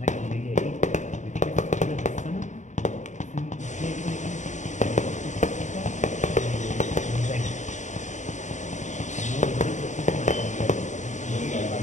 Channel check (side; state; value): right; late; 0.35 ms